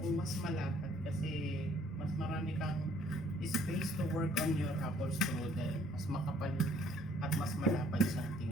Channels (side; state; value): both; normal; correlation 0.61